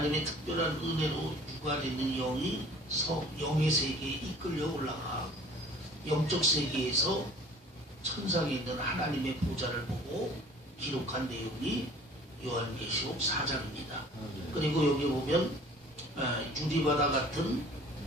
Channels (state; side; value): normal; both; correlation 0.49